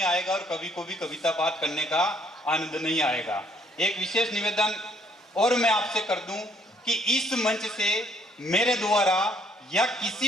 आएगा और कवि को भी कविता पाठ करने का आनंद नहीं आएगा। एक विशेष निवेदन और मैं आपसे कर दूं कि इस मंच से मेरे द्वारा या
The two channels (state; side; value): normal; both; correlation 0.67